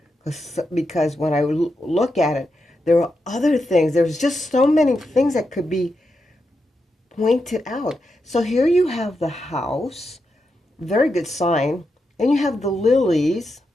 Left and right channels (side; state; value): both; normal; correlation 0.86